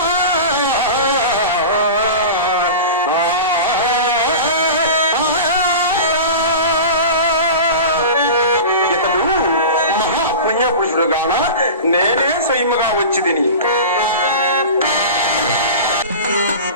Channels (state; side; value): inverted; both; correlation -0.31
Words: ఇతడు మహాపుణ్యపురుషుడుగాన నేనే స్వయముగా వచ్చిదిని.